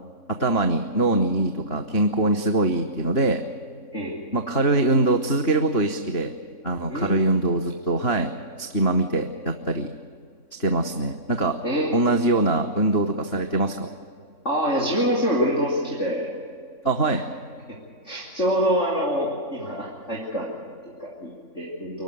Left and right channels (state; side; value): late; right; 3.6 ms